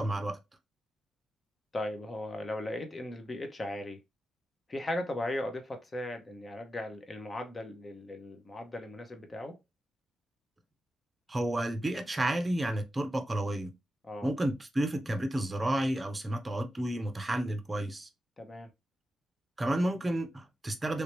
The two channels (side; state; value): both; normal; correlation 0.91